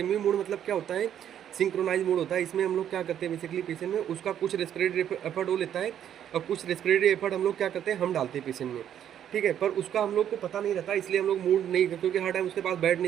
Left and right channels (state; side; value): quieter; left; 10.0 dB